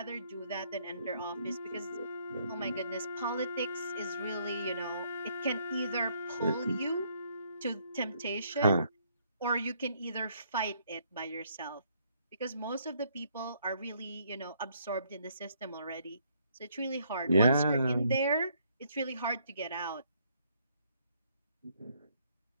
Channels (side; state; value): both; inverted; correlation -0.68